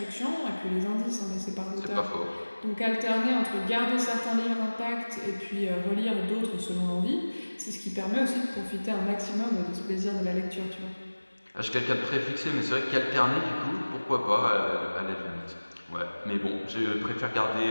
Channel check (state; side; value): inverted; both; correlation -1.00